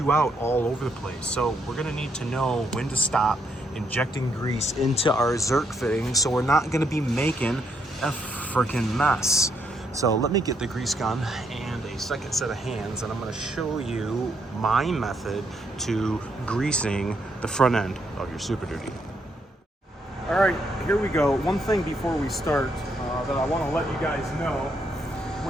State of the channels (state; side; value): normal; both; correlation 0.75